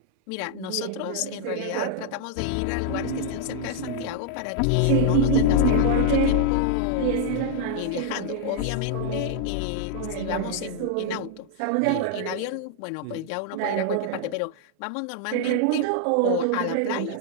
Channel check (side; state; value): both; different; correlation -0.01